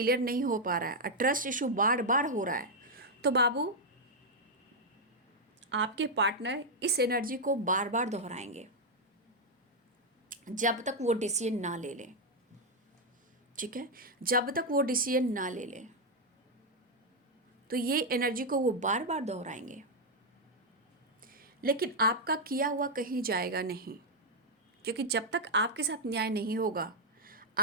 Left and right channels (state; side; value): normal; both; correlation 0.00